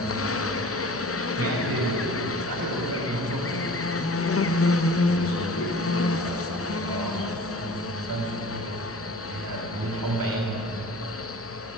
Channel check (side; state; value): left; noise; hum, 20 dB below the sound